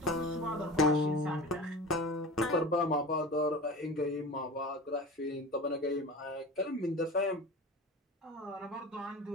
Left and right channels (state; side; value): normal; both; correlation 0.33